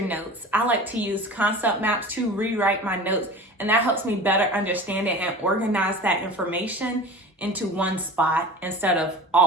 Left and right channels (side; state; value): both; normal; correlation 0.37